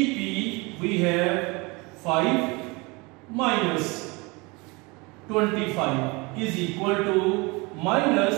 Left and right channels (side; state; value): left; quieter; 26.4 dB